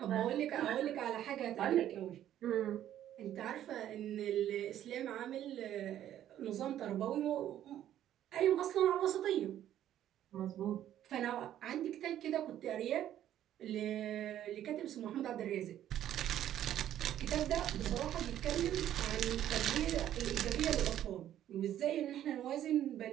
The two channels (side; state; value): left; quieter; 11.6 dB